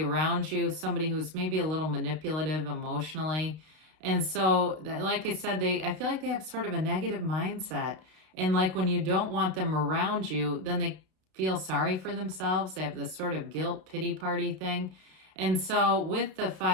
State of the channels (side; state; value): left; late; 32 ms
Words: you, somebody who's maybe a little manipulative emotionally. And so, like I said, I feel like they have sort of a negative mindset. And like when you don't want them around you, then they feel sorry for themselves. They have this sort of guilt pity party thing. And so with the